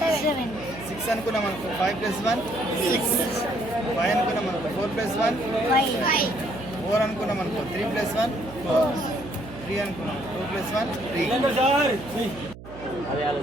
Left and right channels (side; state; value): right; noise; hum, 15 dB below the sound